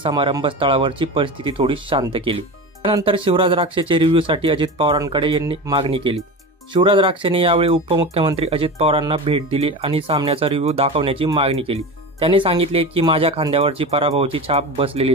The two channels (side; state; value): both; normal; correlation 0.27